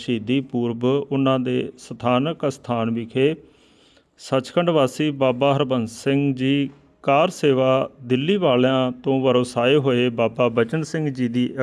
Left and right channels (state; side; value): identical; both; correlation 1.00